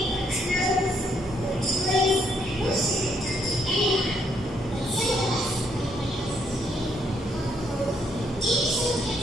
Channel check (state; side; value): normal; both; correlation 0.72